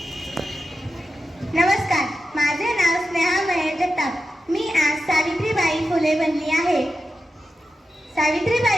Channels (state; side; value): normal; both; correlation 0.91